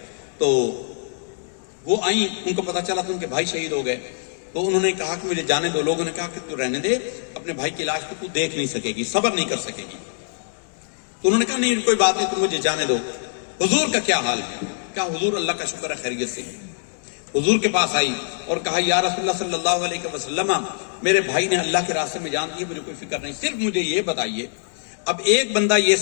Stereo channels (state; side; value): silent; right; digital silence